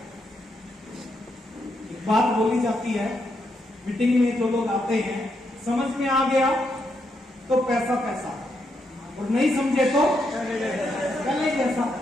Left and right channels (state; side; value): normal; both; correlation 0.80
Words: एक बात बोली जाती है मीटिंग में, जो लोग आते हैं, समझ में आ गया तो पैसा पैसा, और नहीं समझे तो गले जैसा।